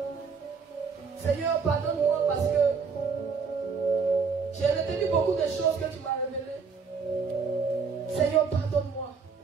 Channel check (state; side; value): quieter; left; 5.4 dB